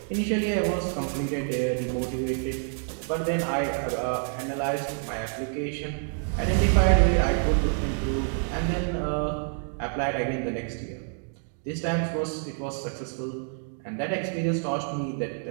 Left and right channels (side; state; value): left; silent; 58 dB below the other